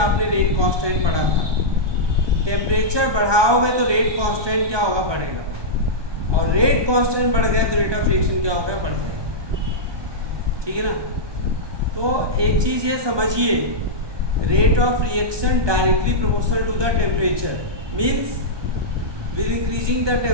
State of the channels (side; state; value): left; late; 1.2 ms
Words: आपने रेट कांस्टेंट पढ़ा था। टेम्परेचर बढ़ाओगे तो रेट कांस्टेंट क्या होगा? बढ़ेगा। और रेट कांस्टेंट बढ़ गया तो रेट ऑफ रिएक्शन क्या होगा? बढ़ जाएगा। ठीक है ना? तो एक चीज़ ये समझिए, rate of reaction directly proportional to the temperature means with increasing the